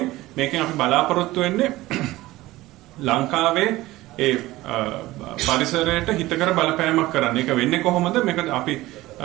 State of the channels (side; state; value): left; quieter; 17.9 dB